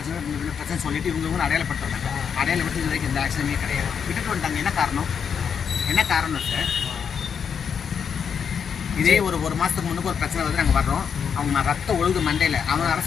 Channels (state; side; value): quieter; right; 7.1 dB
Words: சொல்லிட்டு இவங்க அடையாளப்படுத்துறாங்க. அடையாளப்பட்டு இது வரைக்கும் எந்த ஆக்ஷனுமே கிடையாது. விட்டுட்டு வந்துட்டாங்க. என்ன காரணம் சார்? இதே ஒரு மாதத்துக்கு முன்னுக்கு ஒரு பிரச்சனை வந்து நாங்கள் வர்றோம். அவங்க ரத்தம் ஒழுகு மண்டையில் அவங்க